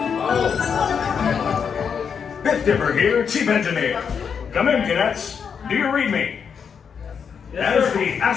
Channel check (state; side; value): quieter; right; 6.8 dB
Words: Biff Dipper here, Chief Engineer. Come in, cadets. Do you read me? As the